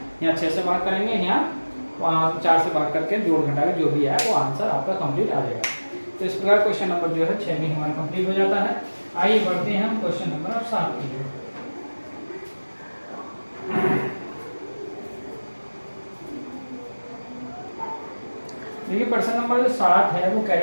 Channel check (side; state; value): both; inverted; correlation -1.00